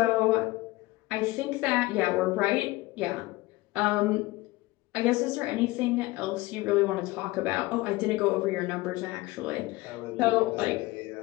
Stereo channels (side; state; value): right; quieter; 20.1 dB